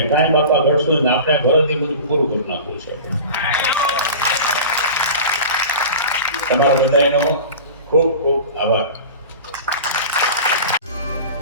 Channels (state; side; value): inverted; both; correlation -0.35